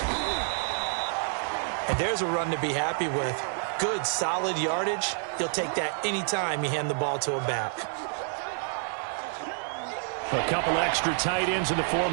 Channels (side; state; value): left; silent; 59 dB below the other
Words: And there's a run to be happy with. Good, solid yardage. He'll take that anytime you hand the ball to a back. A couple extra tight ends in the